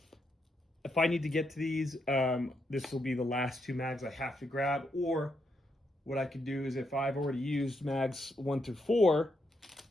If I need to get to these, this will be the last 2 mags I have to grab. Or what I could do is, if I've already used mags 1 through 4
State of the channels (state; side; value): normal; both; correlation 0.80